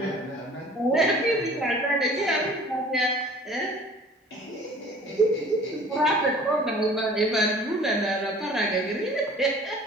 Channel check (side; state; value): both; normal; correlation 0.48